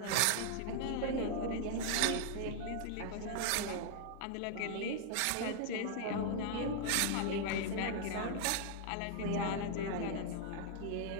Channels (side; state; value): both; different; correlation 0.00